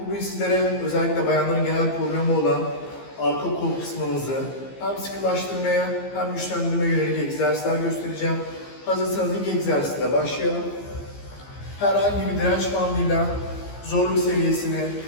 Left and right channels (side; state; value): right; late; 15 ms